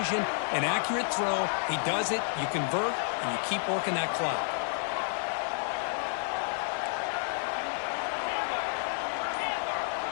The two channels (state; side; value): silent; right; digital silence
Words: an accurate throw. He does it. You convert, and you keep working that clock.